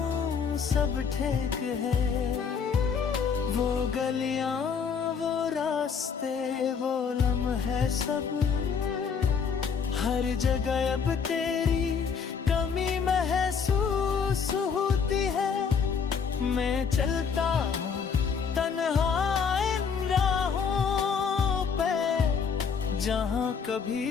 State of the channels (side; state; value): right; quieter; 6.2 dB